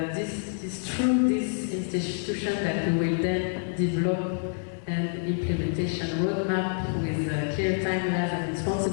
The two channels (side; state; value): right; silent; 60 dB below the other